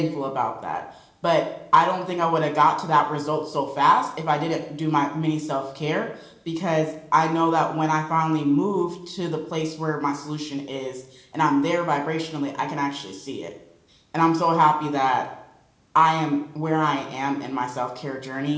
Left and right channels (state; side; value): identical; both; correlation 1.00